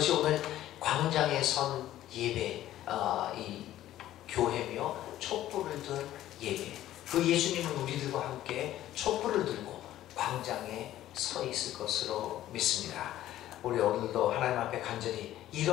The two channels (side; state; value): right; quieter; 13.5 dB